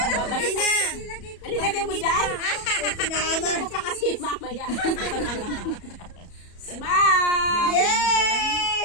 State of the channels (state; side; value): late; right; 34 ms